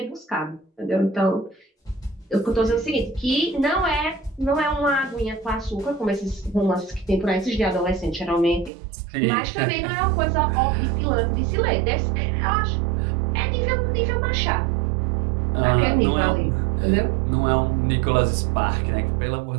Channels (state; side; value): drops out; left; at 8.7 s